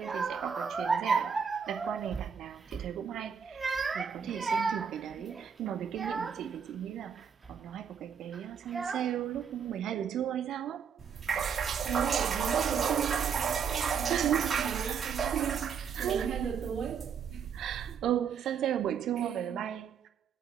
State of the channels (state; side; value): quieter; left; 7.0 dB